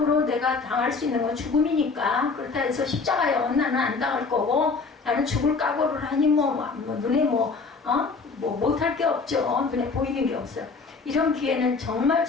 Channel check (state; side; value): quieter; right; 4.5 dB